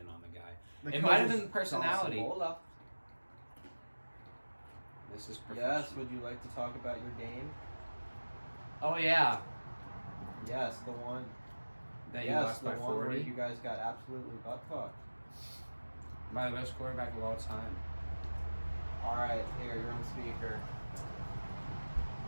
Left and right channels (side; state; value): both; inverted; correlation -1.00